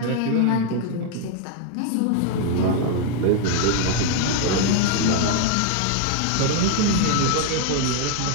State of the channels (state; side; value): different; both; correlation 0.00